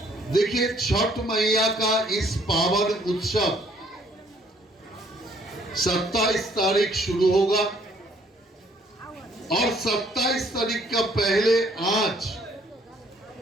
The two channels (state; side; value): normal; both; correlation 0.63